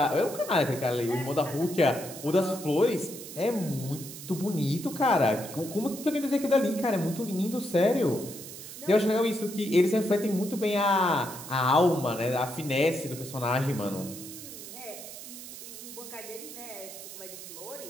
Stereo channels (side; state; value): right; noise; hiss, 12 dB below the sound